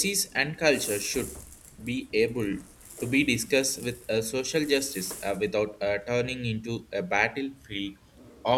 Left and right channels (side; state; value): both; identical; correlation 1.00